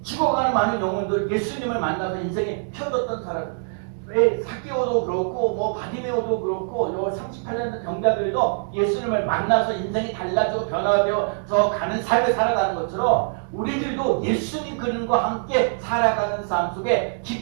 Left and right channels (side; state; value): left; silent; digital silence